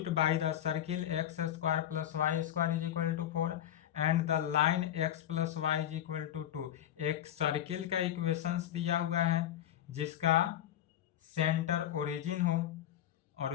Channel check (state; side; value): quieter; right; 11.4 dB